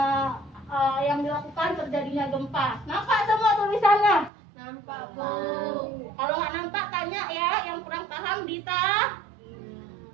Yang dilakukan terjadinya gempa. Nampak semua tulisannya? Nampak, Bu. Kalau nggak nampak, tanya ya. Yang kurang paham, Dita.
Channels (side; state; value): left; drops out; at 4.3 s